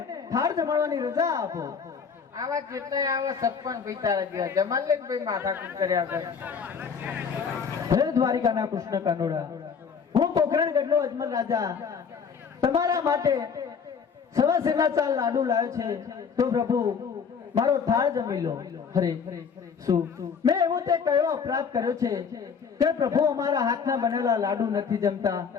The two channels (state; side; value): quieter; right; 6.3 dB